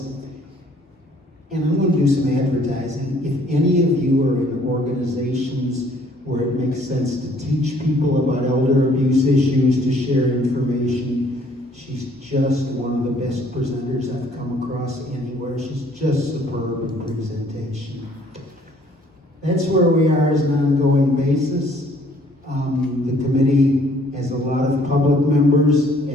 And I'm going to do some advertising. If any of you are in organizations where it makes sense to teach people about elder abuse issues, to share information, she's just one of the best presenters I've come across anywhere. She's just superb in presentation. That's where we are as an ongoing basis. The committee has a lot of public members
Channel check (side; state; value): both; normal; correlation 0.60